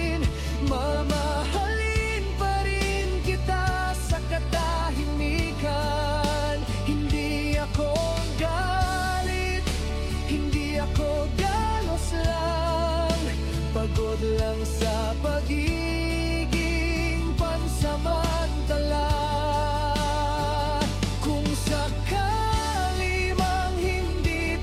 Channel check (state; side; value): identical; both; correlation 1.00